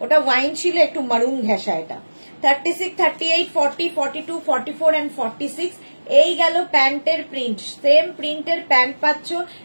ওটা ওয়াইন ছিল, একটু মারুন ঘেঁষা। এটা 36, 38, 40, 42, 44 এন্ড 46। এই গেল প্যান্টের প্রিন্ট, সেম প্রিন্টের প্যান্ট পাচ্ছ,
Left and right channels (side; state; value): both; inverted; correlation -1.00